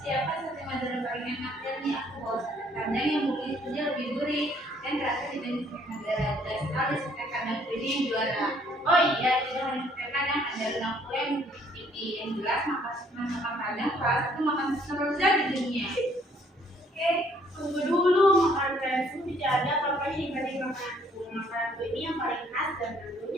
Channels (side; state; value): both; normal; correlation 0.63